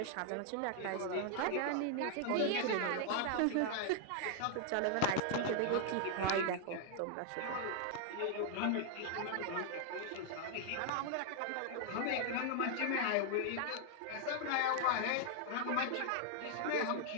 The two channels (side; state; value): both; different; correlation 0.00